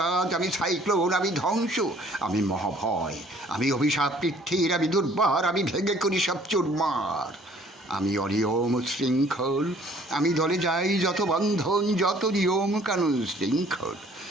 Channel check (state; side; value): normal; both; correlation 0.57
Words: আমি সাইক্লোন, আমি ধ্বংস, আমি মহাভয়, আমি অভিশাপ পৃথ্বীর, আমি দুর্বার, আমি ভেঙে করি সব চুরমার। আমি অনিয়ম শৃঙ্খল, আমি দলে যাই যত বন্ধন, যত নিয়ম কানুন শৃঙ্খল।